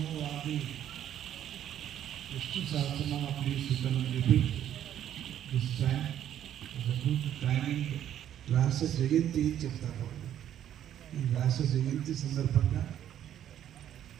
Sahasranama, please you can repeat this time. The good timing. వ్యాస జయంతి చెప్తారు. ఈ వ్యాస జయంతి సందర్భంగా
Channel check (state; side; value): quieter; left; 10.8 dB